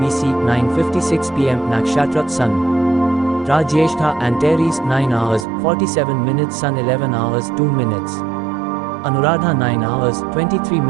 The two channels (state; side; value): drops out; left; at 5.5 s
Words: 9:56 pm Nakshatra Sun Ra Jyeshtha Antares 9 hours 47 minutes Sun 11 hours 2 minutes Anuradha 9 hours, 23